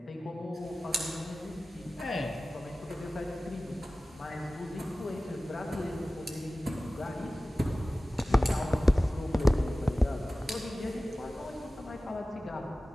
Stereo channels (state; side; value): normal; both; correlation 0.97